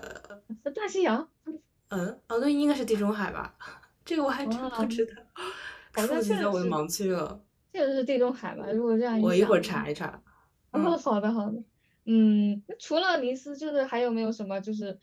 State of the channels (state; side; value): identical; both; correlation 1.00